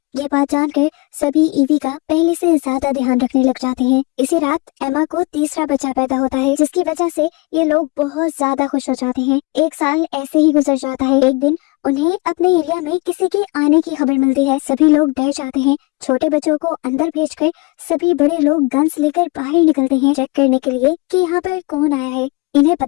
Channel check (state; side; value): quieter; right; 26.0 dB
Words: ये बात जानकर सभी ईवी का पहले से ज्यादा ध्यान रखने लग जाते हैं। इसी रात एमा को तीसरा बच्चा पैदा होता है, जिसकी वजह से ये लोग बहुत ज्यादा खुश हो जाते हैं। एक साल ऐसे ही गुजर जाता है। एक दिन उन्हें अपने एरिया में किसी के आने की खबर मिलती है। सभी लोग डर जाते हैं। छोटे बच्चों को अंदर भेजकर सभी बड़े लोग गन्स लेकर बाहर निकलते हैं चेक करने के लिए कि यहाँ पर कौन आया है। इन्हें